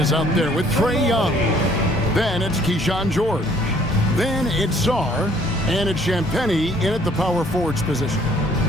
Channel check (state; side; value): normal; both; correlation 0.60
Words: out there with Trae Young. Then it's Keyshawn George. Then it's Sarr. And it's Champagnie in at the power forwards position.